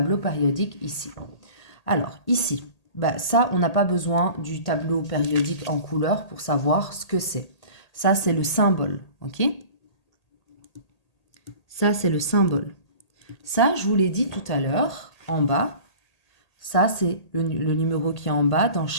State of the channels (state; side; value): late; right; 1.8 ms